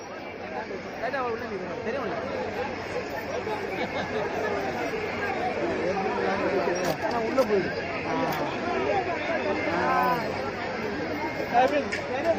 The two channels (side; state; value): both; identical; correlation 1.00